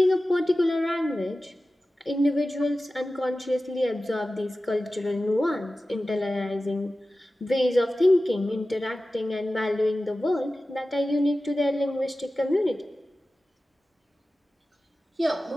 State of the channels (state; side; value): normal; both; correlation 0.95